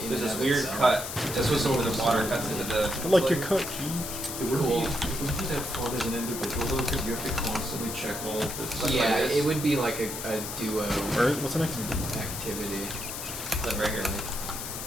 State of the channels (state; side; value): noise; left; hiss, 7 dB below the sound